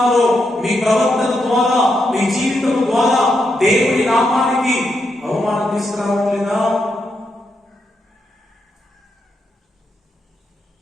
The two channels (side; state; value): both; normal; correlation 0.82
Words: మీ ప్రవర్తన ద్వారా, మీ జీవితం ద్వారా దేవుని నామానికి అవమానం తీసుకురావట్లేదా?